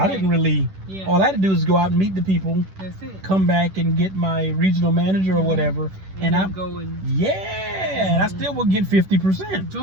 didn't really, Yeah. all I had to do was go out and meet the people, That's it. come back and get my regional manager or whatever, and then I go and yeah, bad, I still will get 50%.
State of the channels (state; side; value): late; left; 10 ms